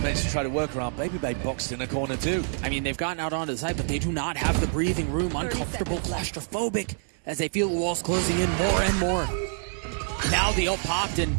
to try to work around. Baby Bay boxed in a corner too. I mean, they've gotten out onto the side, but they do not have the breathing room. Uncomfortable, claustrophobic, as they feel the walls closing in more and more. Now the ult popped, and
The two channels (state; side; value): silent; left; digital silence